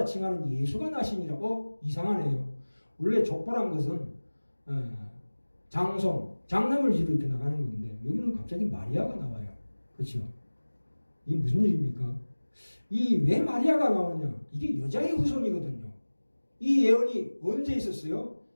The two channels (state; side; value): inverted; both; correlation -1.00